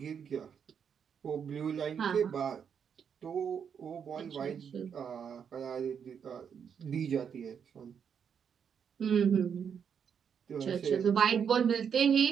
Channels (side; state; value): left; quieter; 7.4 dB